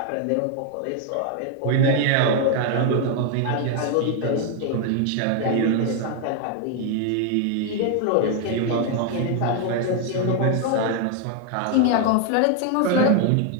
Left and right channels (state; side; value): different; both; correlation 0.01